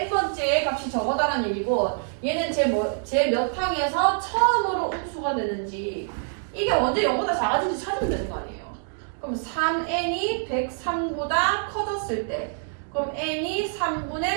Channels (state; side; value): silent; left; digital silence